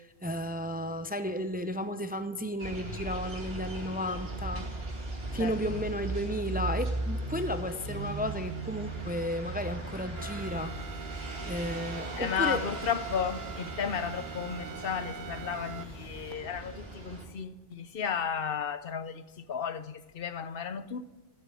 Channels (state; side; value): normal; both; correlation 0.22